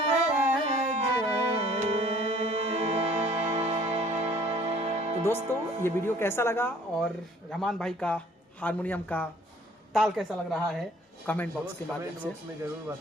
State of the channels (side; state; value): both; normal; correlation 0.55